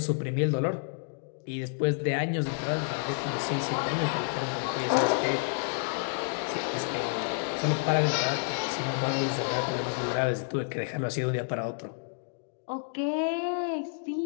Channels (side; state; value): right; silent; digital silence